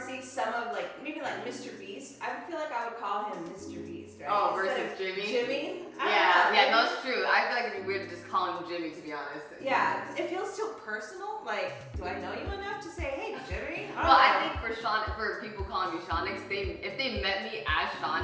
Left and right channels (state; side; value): identical; both; correlation 1.00